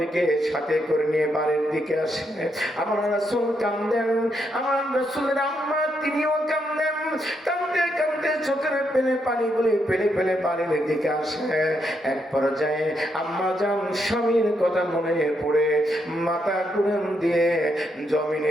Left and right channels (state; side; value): normal; both; correlation 0.79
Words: সাথে করে নিয়ে বাড়ির দিকে আসে। আমার রাসূল কাঁদেন, আমার রাসূলের আম্মা তিনিও কাঁদেন, কাঁদতে কাঁদতে চোখের পানিগুলি ফেলে ফেলে বাড়ির দিকে আসে। এক পর্যায়ে আম্মা জান স্বামীর কথা মনে পড়ে মাথা ঘুরান দিয়ে